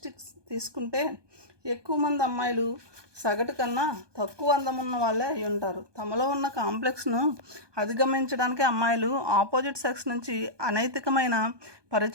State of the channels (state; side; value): late; left; 1.2 ms